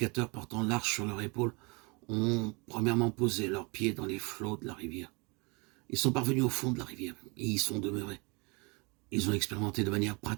portant l'arche sur leur épaule ont premièrement posé leurs pieds dans les flots de la rivière. Ils sont parvenus au fond de la rivière et y sont demeurés. Ils ont expérimenté de manière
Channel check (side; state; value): left; quieter; 29.4 dB